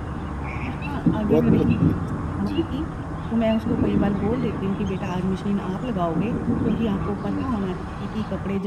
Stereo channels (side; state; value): both; identical; correlation 1.00